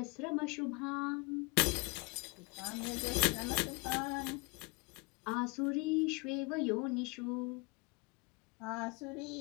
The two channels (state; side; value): quieter; right; 29.3 dB